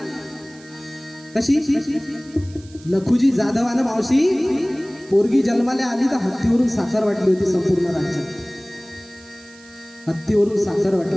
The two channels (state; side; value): noise; right; hiss, 24 dB below the sound